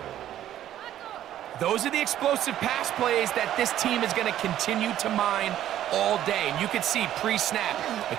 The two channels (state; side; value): quieter; left; 12.0 dB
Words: Those are the explosive pass plays that this team is going to continue to mine all day. And you can see pre-snap, the